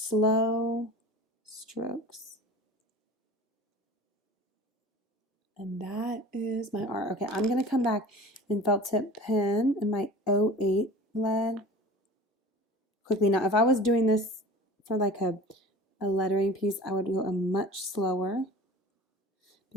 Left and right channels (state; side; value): normal; both; correlation 0.40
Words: strokes. And that is my R. Okay, I'm going to come back in felt tip pen and my 08 lead quickly. Now, if I was doing this for like a lettering piece, I would go a much slower,